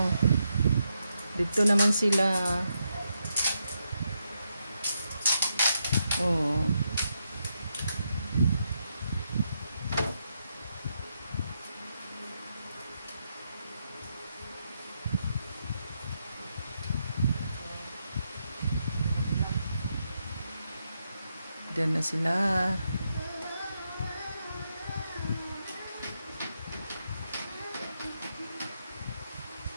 Dito naman sila. Oh. Diyan na sila.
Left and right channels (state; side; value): inverted; both; correlation -0.82